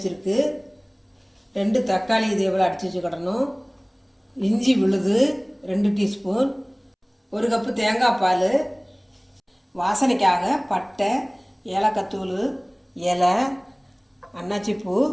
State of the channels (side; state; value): both; identical; correlation 1.00